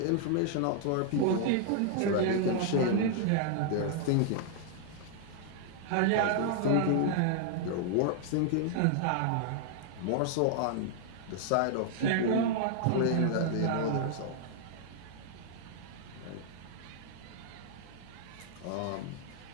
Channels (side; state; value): both; different; correlation 0.00